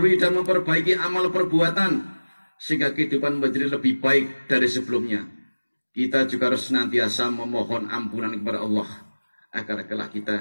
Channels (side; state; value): both; inverted; correlation -1.00